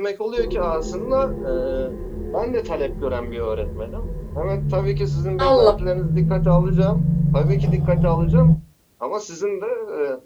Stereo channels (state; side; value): identical; both; correlation 1.00